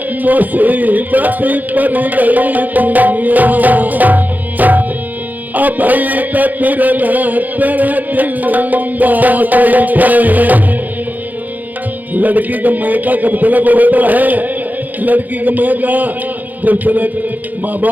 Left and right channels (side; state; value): left; late; 0.082 ms